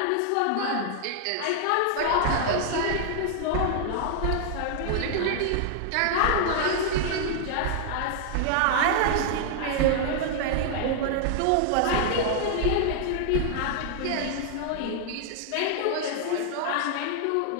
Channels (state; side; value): different; both; correlation 0.00